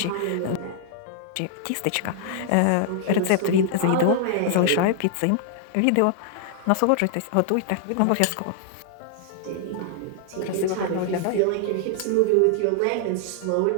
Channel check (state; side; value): different; both; correlation -0.01